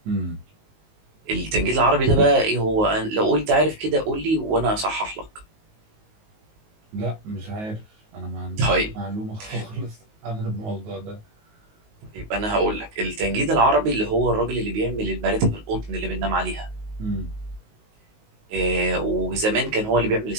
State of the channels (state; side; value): late; left; 19 ms